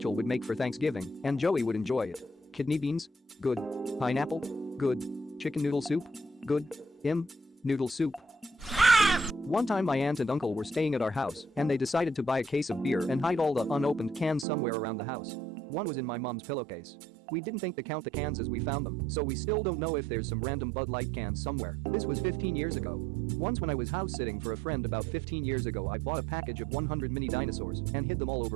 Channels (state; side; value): drops out; left; at 14.5 s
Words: would make for Thanksgiving, and Joey would enjoy it. Kidney beans? Good. Pineapple? Good. Chicken noodle soup? Good. Noodle soup. One time my aunt and uncle were staying at our house, and they decided to buy a case of beer and hide all the unopened cans somewhere around the house. One was in my mom's pillowcase. We didn't think to count the cans as we found them, so we still don't know if there's some random Bud Light cans somewhere. This was 15 years ago. Once when I was house sitting for a friend about 15 years ago, I bought a package of 100 mini dinosaurs and hid them all over